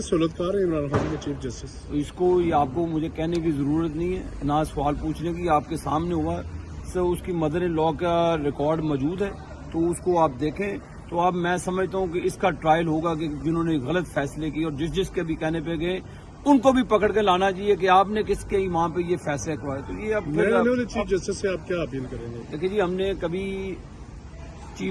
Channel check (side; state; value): both; identical; correlation 1.00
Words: ہے عمران خان کے چیف جسٹس؟ اس کو یہ آپ کو مجھے کہنے کی ضرورت نہیں ہے، نہ سوال پوچھنے کی، آپ کے سامنے ہوا سو اس کی مدر ان لا کا ریکارڈ موجود ہے، تو اس کو آپ دیکھیں۔ تو اب میں سمجھتا ہوں کہ اس کا ٹرائل ہوگا کہ جنہوں نے غلط فیصلے کیے اور جس کے بھی کہنے پہ گئے ان کو بھی پکڑ کے لانا چاہیے کہ آپ نے کس کے ایمان پہ یہ فیصلے کروائے۔ تو یہ اب چیف جسٹس سے آپ کیا اپیل کریں گے؟ دیکھیے جی، ہم نے کبھی